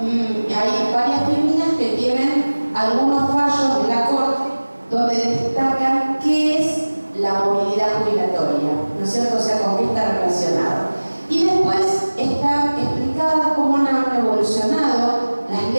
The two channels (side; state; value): both; inverted; correlation -1.00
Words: hay varias tribunas que tienen algunos fallos de la Corte donde destacan qué es la movilidad jubilatoria, ¿no es cierto? O sea, con qué está relacionado. Y después está explicada cómo han evolucionado las